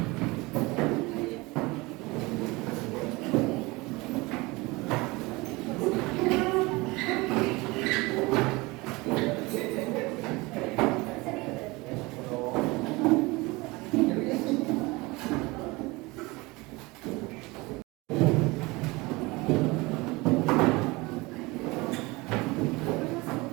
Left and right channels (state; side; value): quieter; left; 23.4 dB